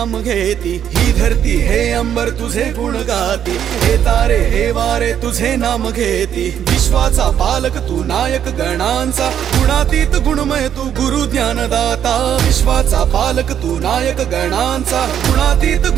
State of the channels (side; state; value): left; quieter; 9.5 dB